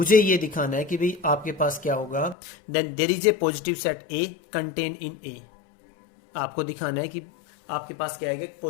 ये दिखाना है कि भाई आपके पास क्या होगा, then there is a positive set A contain in A. आपको दिखाना है कि आपके पास क्या है,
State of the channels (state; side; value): drops out; right; at 2.4 s